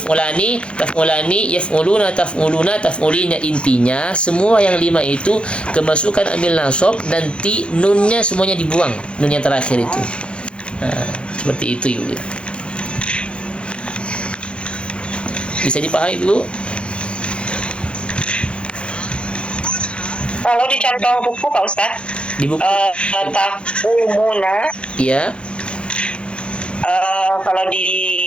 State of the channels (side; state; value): right; late; 0.057 ms